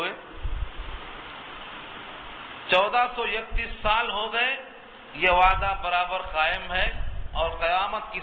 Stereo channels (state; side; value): identical; both; correlation 1.00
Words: 1431 سال ہو گئے، یہ وعدہ برابر قائم ہے اور قیامت کی